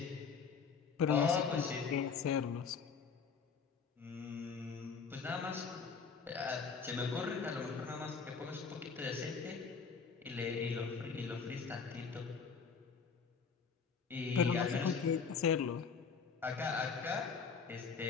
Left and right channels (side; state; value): right; quieter; 5.7 dB